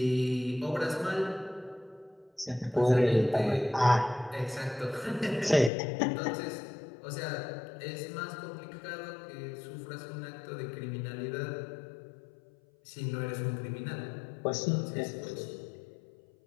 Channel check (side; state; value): right; drops out; at 5.7 s